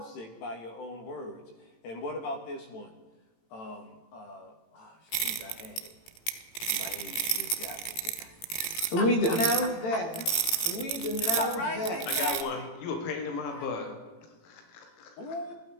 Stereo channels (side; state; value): right; late; 18 ms